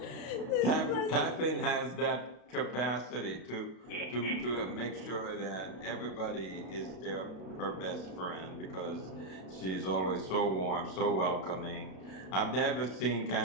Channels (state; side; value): late; right; 32 ms